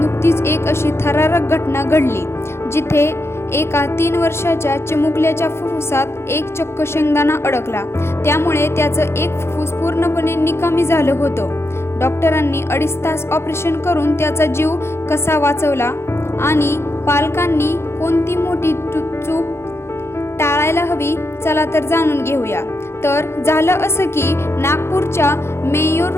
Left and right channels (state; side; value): late; right; 0.12 ms